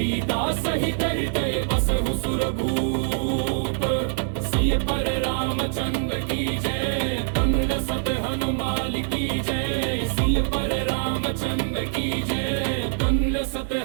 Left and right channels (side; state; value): left; silent; digital silence